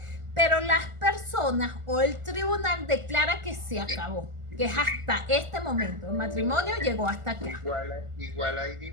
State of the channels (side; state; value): left; late; 1.4 ms